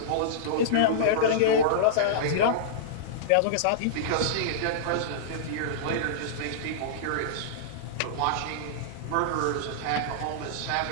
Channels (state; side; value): different; both; correlation -0.03